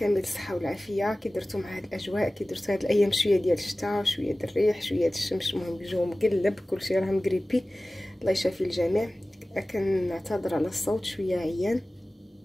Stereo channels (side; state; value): both; normal; correlation 0.97